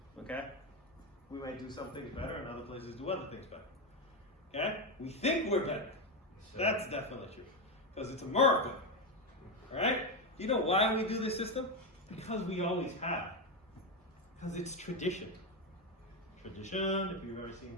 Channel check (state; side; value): normal; both; correlation 0.10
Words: Okay? We might do some things better, and other places do other things better. Okay? We think we're better. That's definitely true. Because it's America. Alright? You know why we do this system? Because we always have. Because it's tradition. Tradition, if you've ever